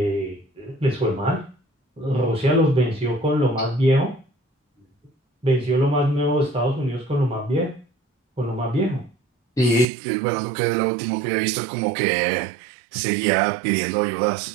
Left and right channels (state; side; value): drops out; left; at 9.9 s